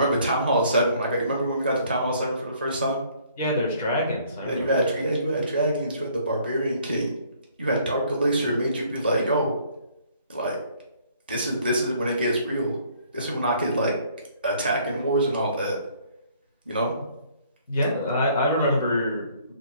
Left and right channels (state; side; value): inverted; both; correlation -0.61